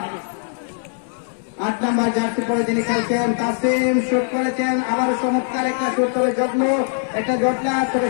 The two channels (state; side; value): silent; right; 57 dB below the other